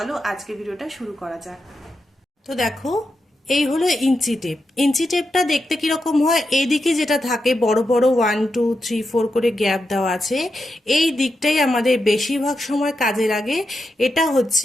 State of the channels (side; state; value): both; normal; correlation 0.87